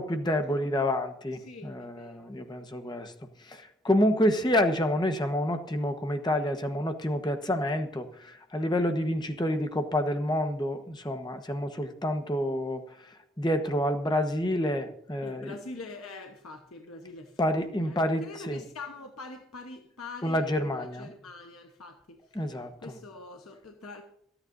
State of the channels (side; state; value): both; normal; correlation 0.68